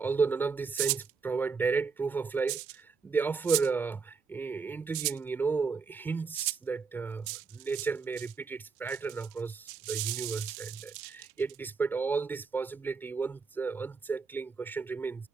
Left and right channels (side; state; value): left; quieter; 5.1 dB